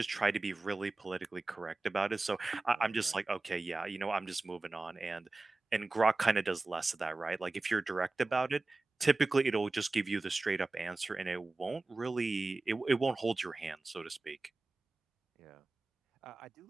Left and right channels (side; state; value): left; quieter; 3.4 dB